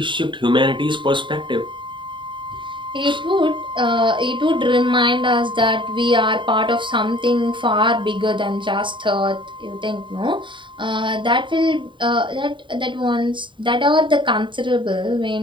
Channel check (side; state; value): left; late; 0.23 ms